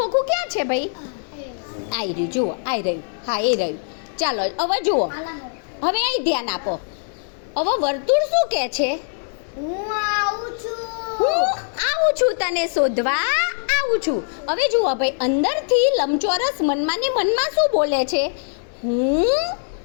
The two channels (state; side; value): silent; right; digital silence